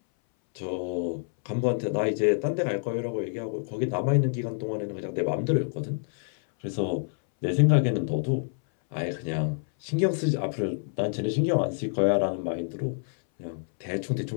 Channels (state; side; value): silent; right; 60 dB below the other